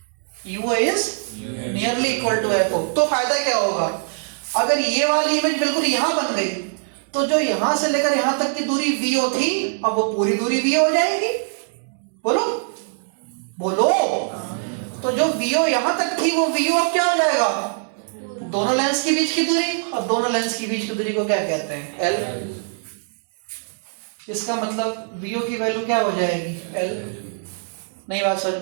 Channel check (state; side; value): silent; left; 64 dB below the other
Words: UO is nearly equal to FO। तो फायदा क्या होगा? अगर ये वाली इमेज बिल्कुल यहां बन गई तो जो यहां से लेकर यहां तक की दूरी VO थी, अब वो पूरी दूरी VO हो जाएगी। बोलो बोलो। तो जो VO यहां तक थी वो VO अब क्या हो जाएगा? दोनों लेंस के बीच की दूरी। और दोनों लेंस के बीच की दूरी को क्या कहते हैं? L। इसका मतलब वीओ की वैल्यू क्या हो जाएगी एल। नई बात समझ